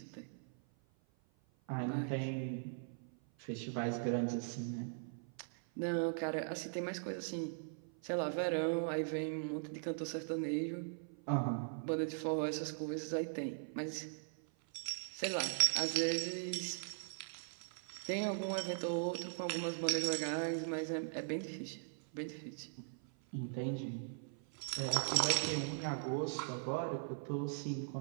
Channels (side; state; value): left; silent; 51 dB below the other